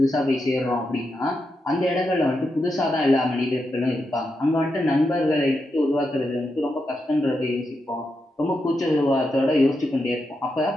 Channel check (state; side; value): normal; both; correlation 0.85